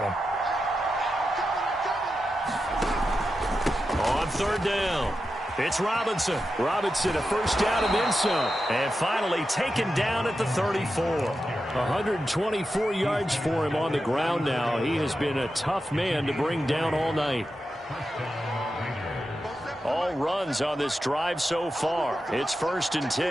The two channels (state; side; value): normal; both; correlation 0.90